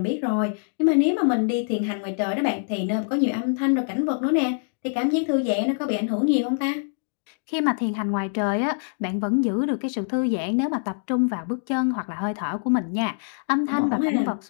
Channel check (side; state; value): right; silent; digital silence